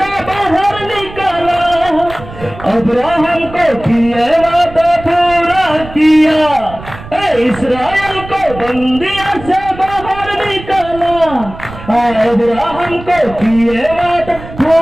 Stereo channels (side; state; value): right; noise; rumble, 14 dB below the sound